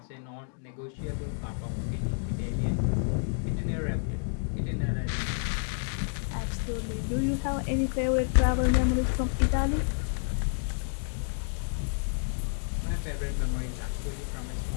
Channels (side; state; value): right; silent; digital silence